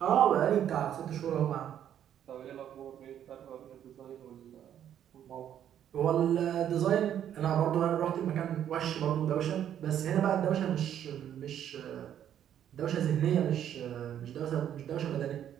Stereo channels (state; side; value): quieter; left; 10.1 dB